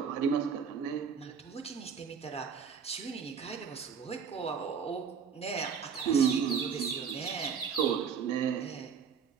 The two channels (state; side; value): quieter; left; 6.7 dB